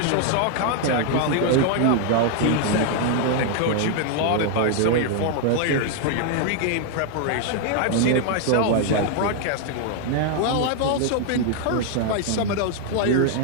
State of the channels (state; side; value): different; both; correlation 0.00